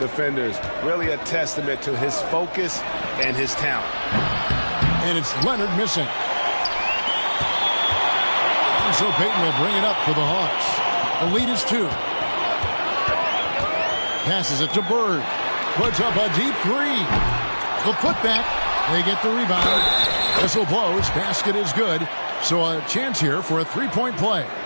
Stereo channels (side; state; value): both; inverted; correlation -1.00